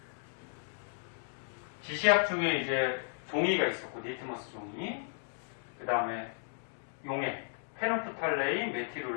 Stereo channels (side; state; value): right; silent; digital silence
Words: 지시약 중에 이제 종이가 있었고, 니트머스 종이. 그 다음에 용액, 페놉프탈레인,